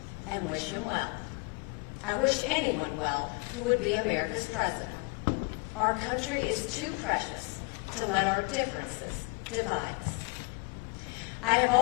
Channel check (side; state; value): right; quieter; 30.6 dB